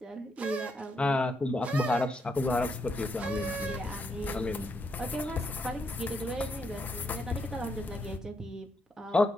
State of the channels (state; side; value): normal; both; correlation 0.78